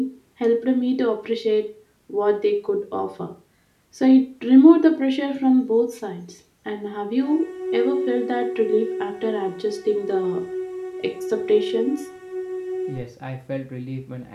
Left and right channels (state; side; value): identical; both; correlation 1.00